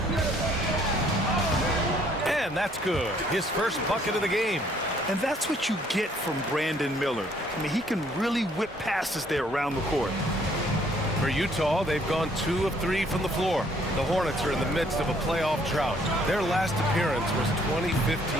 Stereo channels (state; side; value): normal; both; correlation 0.64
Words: And that's good. His first bucket of the game. And that's what you get from Brandon Miller. I mean, he can really whip passes there around the court. For Utah, they've gone 2 of 3 from the floor. The Hornets are in the midst of a playoff drought. Their last appearance was 2015,